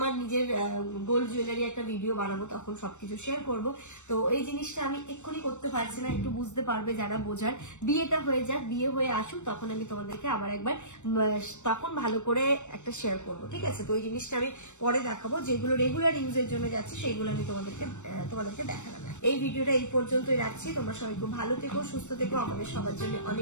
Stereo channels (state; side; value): late; right; 0.84 ms